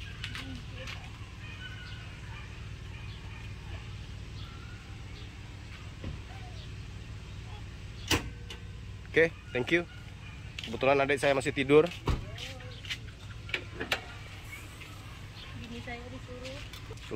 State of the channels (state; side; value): identical; both; correlation 1.00